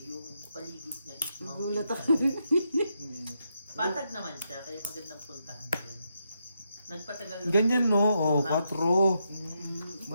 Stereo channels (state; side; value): inverted; both; correlation -0.82